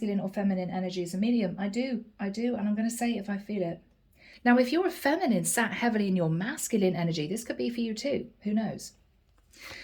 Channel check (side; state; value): both; identical; correlation 1.00